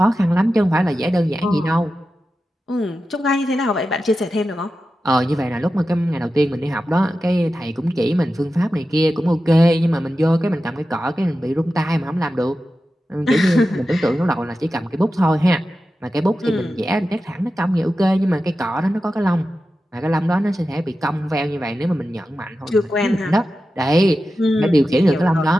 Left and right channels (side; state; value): both; normal; correlation 0.92